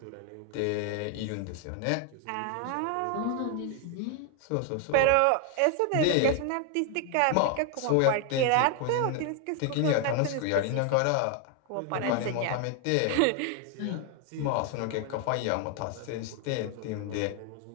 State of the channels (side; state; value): both; different; correlation 0.01